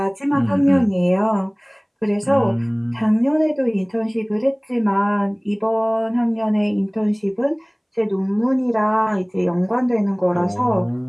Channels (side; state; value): both; identical; correlation 1.00